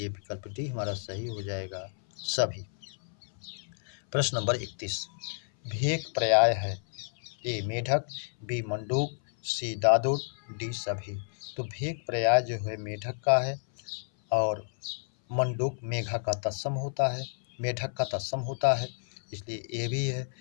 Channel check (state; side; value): silent; right; 57 dB below the other